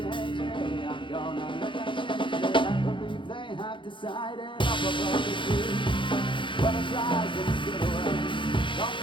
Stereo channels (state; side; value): late; right; 0.24 ms